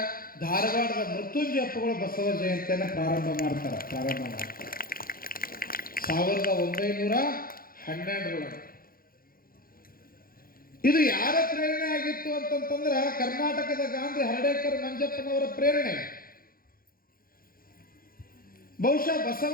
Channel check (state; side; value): late; right; 0.42 ms